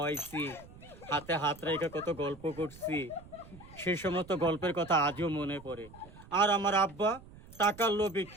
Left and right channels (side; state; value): right; noise; rumble, 20 dB below the sound